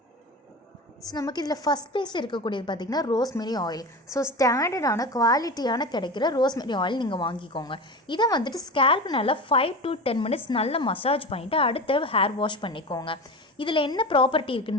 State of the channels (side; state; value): both; normal; correlation 0.28